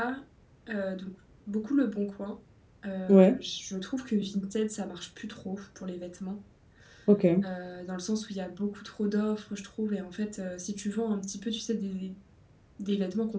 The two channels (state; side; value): identical; both; correlation 1.00